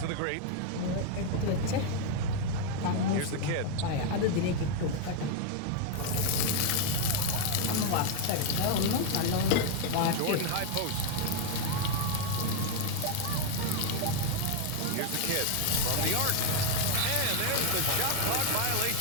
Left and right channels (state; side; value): different; both; correlation 0.01